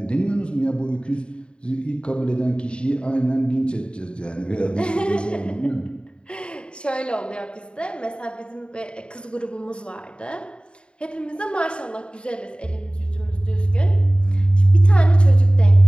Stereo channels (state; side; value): late; right; 0.054 ms